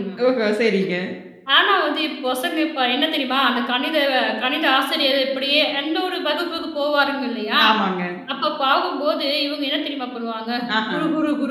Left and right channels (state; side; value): identical; both; correlation 1.00